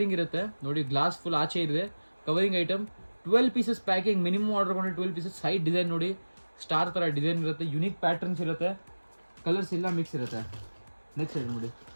ಇರುತ್ತೆ ನೋಡಿ, ಗ್ಲಾಸ್ ಫುಲ್ ಆಚೆ ಇದೆ, covering item. 12 pieces packing, minimum order ಕೊಂಡ್ರೆ 12 ಪೀಸಸ್. ಸೈಡ್ ಡಿಸೈನ್ ನೋಡಿ, ಸ್ಟಾರ್ ಥರ ಡಿಸೈನ್ ಇರುತ್ತೆ, ಯುನೀಕ್ ಪ್ಯಾಟರ್ನ್ಸ್ ಇರುತ್ತೆ, ಕಲರ್ಸ್ ಎಲ್ಲ ಮಿಕ್ಸ್ ಇರುತ್ತೆ. ನೆಕ್ಸ್ಟ್ ಐಟಮ್ ನೋಡಿ,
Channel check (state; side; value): inverted; both; correlation -1.00